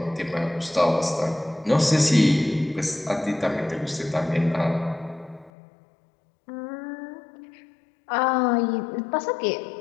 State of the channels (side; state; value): right; drops out; at 5.5 s